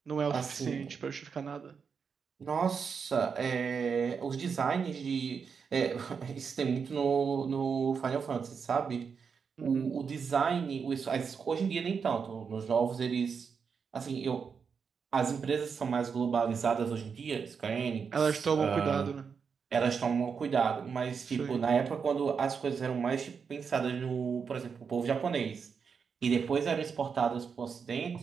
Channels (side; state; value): left; quieter; 6.1 dB